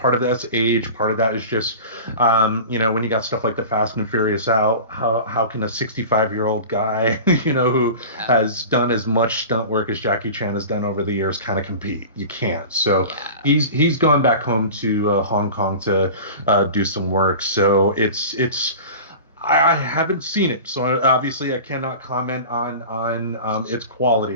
of that's age, part of that is just, when you got stuff like the Fast and Furious out, how can a 65-year-old guy, who Yeah. has done as much stunt work as Jackie Chan has done over the years kind of compete? You can't. So Yeah. he's gone back home to Hong Kong to do some work. So it's I haven't seen it, so obviously I cannot comment on its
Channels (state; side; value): inverted; both; correlation -0.35